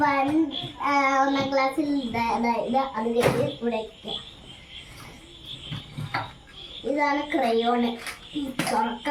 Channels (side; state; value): both; identical; correlation 1.00